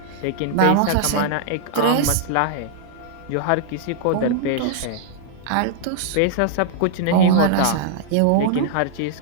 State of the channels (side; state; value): both; different; correlation -0.01